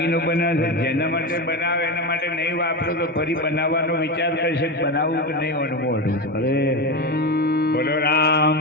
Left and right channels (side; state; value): both; normal; correlation 0.17